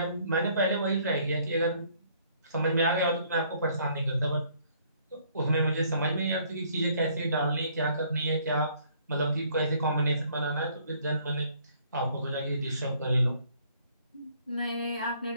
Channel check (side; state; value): both; inverted; correlation -0.62